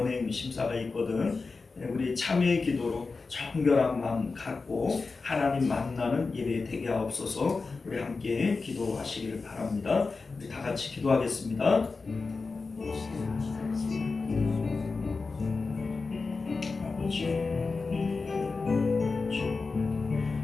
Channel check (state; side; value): quieter; right; 4.2 dB